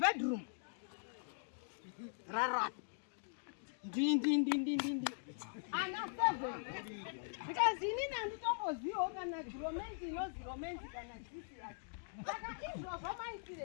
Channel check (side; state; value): right; silent; digital silence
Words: bedroom rara ndindi ana 7 because inini handitombozivo kana romance inozi romance kana chisi yacho saka izvo